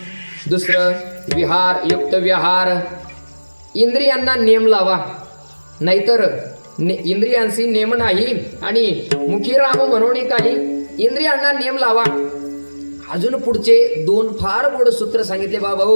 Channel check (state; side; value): inverted; both; correlation -1.00